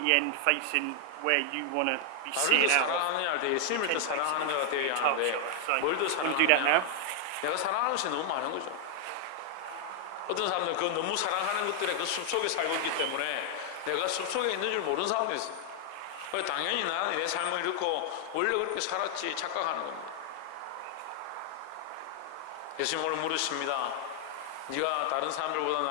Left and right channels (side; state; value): both; different; correlation 0.00